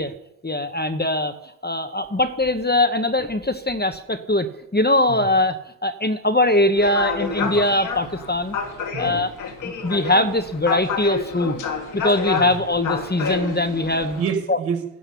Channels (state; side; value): normal; both; correlation -0.02